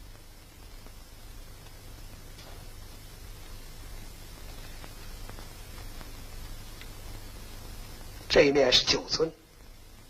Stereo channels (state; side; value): identical; both; correlation 1.00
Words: 这一面是9尊，